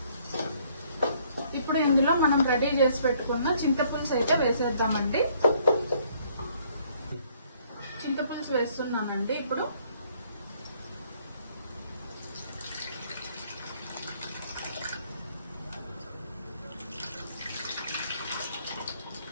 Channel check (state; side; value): inverted; both; correlation -0.64